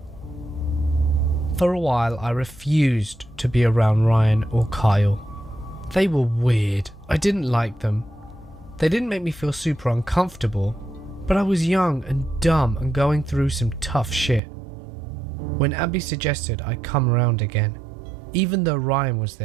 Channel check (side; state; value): left; drops out; at 14.4 s